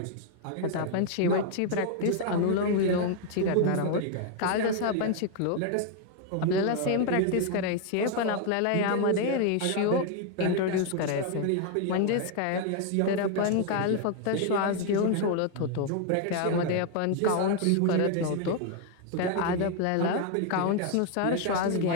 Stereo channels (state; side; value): different; both; correlation 0.00